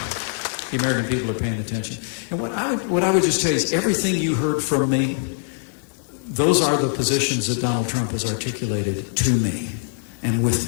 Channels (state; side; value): silent; right; 60 dB below the other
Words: The American people are paying attention. And what I would just tell you is everything you heard from me, those are the positions that Donald Trump has articulated to me and with